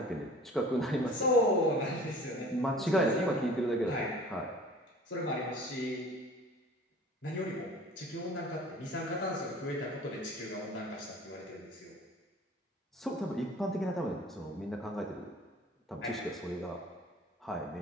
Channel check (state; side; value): normal; both; correlation 0.45